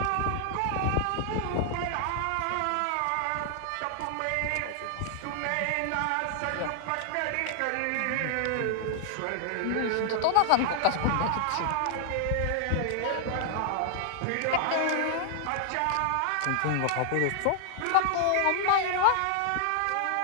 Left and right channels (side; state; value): both; different; correlation 0.00